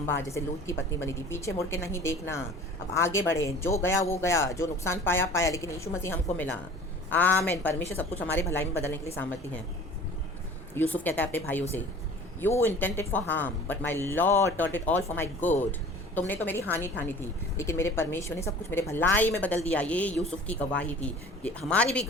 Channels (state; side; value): normal; both; correlation 0.44